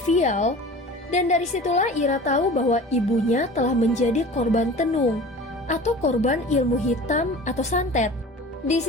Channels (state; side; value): normal; both; correlation 0.39